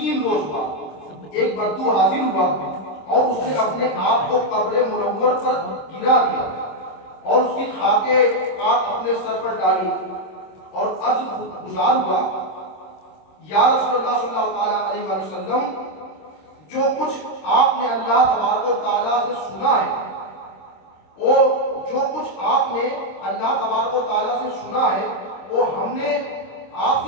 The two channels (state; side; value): late; right; 26 ms